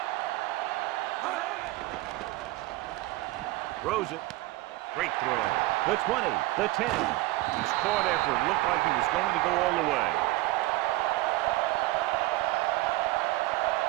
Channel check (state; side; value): quieter; left; 18.8 dB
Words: Throws it. Great throw. The 20, the 10. He's caught after it looked like he was going to go all the way.